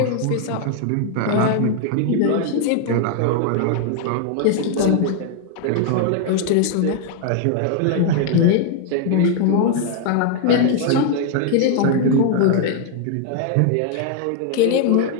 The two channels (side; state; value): both; different; correlation 0.00